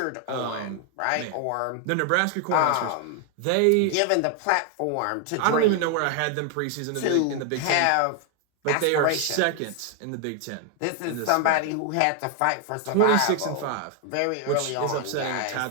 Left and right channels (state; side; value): different; both; correlation 0.00